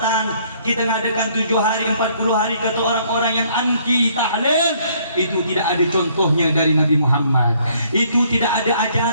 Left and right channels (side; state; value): both; inverted; correlation -0.64